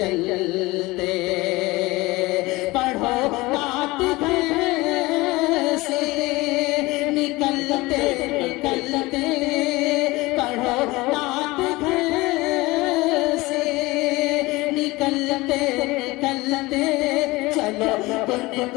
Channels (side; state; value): right; quieter; 21.2 dB